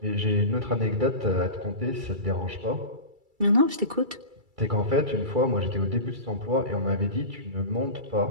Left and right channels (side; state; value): left; late; 2.3 ms